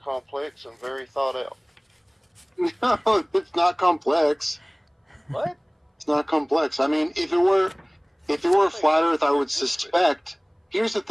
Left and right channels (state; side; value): identical; both; correlation 1.00